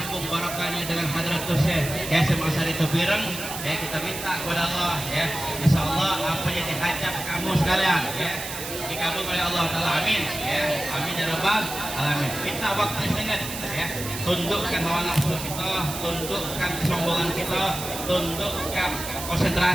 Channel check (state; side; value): noise; right; hiss, 8 dB below the sound